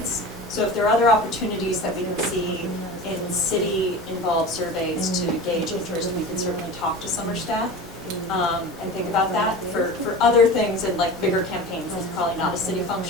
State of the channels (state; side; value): normal; both; correlation 0.33